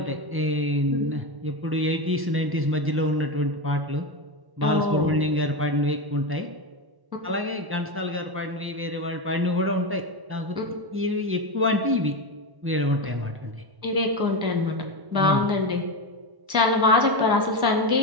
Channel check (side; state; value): left; late; 1.1 ms